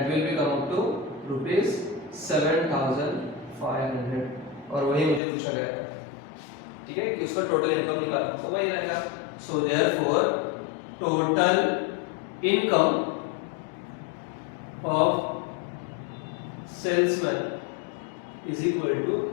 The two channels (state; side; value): drops out; right; at 5.2 s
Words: will be come up to ₹7,500। और वही मुझे पूछा गया था, ठीक है, कि उसका टोटल इनकम निकाल, तो वही रहेगा। So therefore total income of salesman is equal to